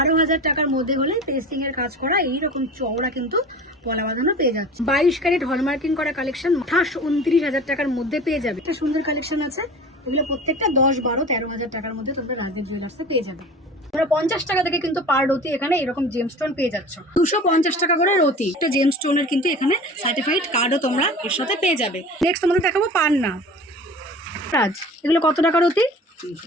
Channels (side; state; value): both; normal; correlation 0.39